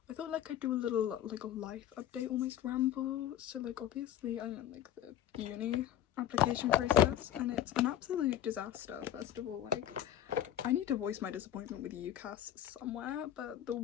I thought like I'd do a little like a life update almost ramble. So like obviously I'm in like the uni application process and it's an absolute disaster. First of all, like I need to voice my disappointment with UCAS somewhere, but the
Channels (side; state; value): right; quieter; 10.8 dB